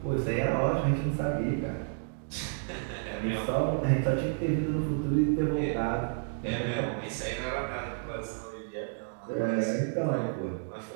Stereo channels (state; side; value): silent; left; digital silence